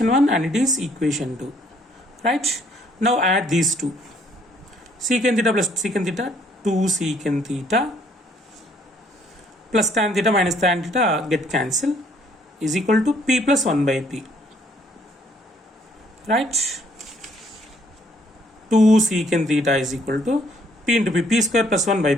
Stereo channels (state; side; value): normal; both; correlation 0.64